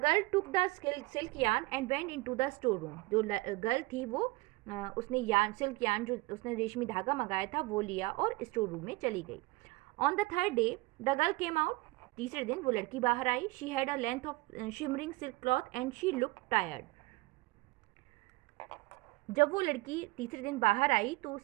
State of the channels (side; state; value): left; quieter; 21.7 dB